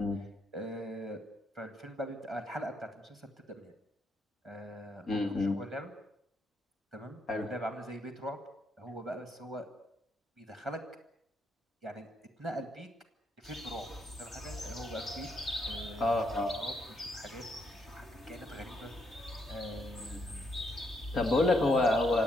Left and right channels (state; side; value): normal; both; correlation 0.76